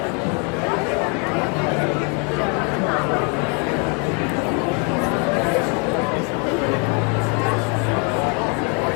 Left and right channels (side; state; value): right; quieter; 33.8 dB